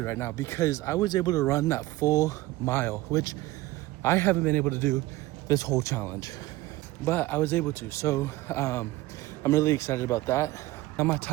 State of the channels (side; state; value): left; quieter; 18.0 dB